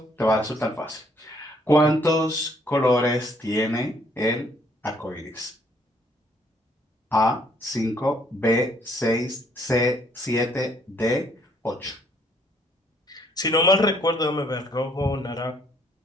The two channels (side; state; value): both; normal; correlation 0.66